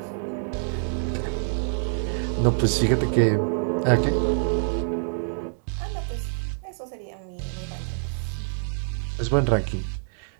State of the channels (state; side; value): silent; left; digital silence